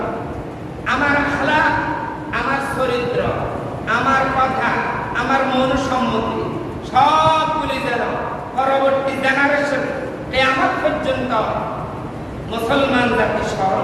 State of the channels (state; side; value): identical; both; correlation 1.00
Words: আমার আখলাক, আমার চরিত্র, আমার কথা, আমার মন সম্মতি সবগুলি যেন পরবর্তী জেনারেশন কিয়ামত পর্যন্ত মুসলমান জাতি